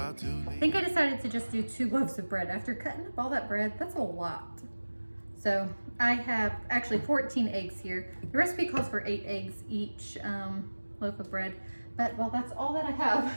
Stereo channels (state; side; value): inverted; both; correlation -1.00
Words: I think I decided to just do 2 loaves of bread. After cutting up all that bread, that's a lot. So I have actually 14 eggs here. The recipe calls for 8 eggs each loaf of bread, but well, that's all that I